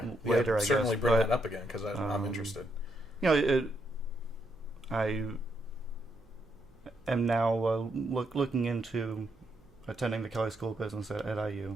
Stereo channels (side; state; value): right; noise; hum, 29 dB below the sound